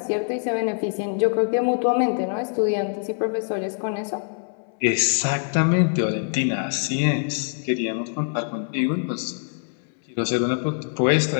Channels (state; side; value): silent; right; 63 dB below the other